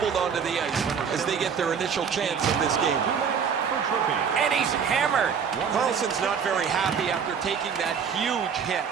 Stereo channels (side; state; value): left; quieter; 6.8 dB